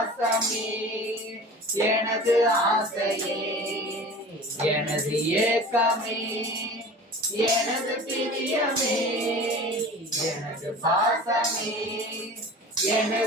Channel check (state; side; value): normal; both; correlation 0.39